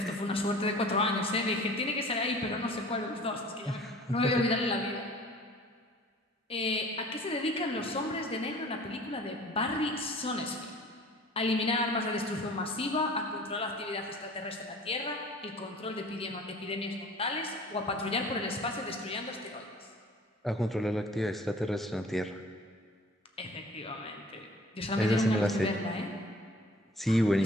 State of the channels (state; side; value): normal; both; correlation 0.47